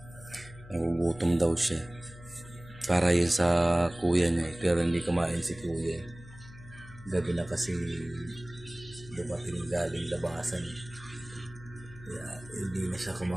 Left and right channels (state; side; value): noise; left; hum, 18 dB below the sound